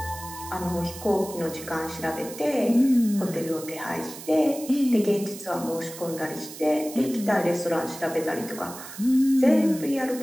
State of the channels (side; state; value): right; noise; hiss, 13 dB below the sound